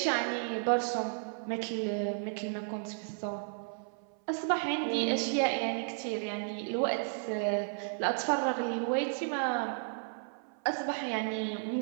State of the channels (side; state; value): left; silent; 56 dB below the other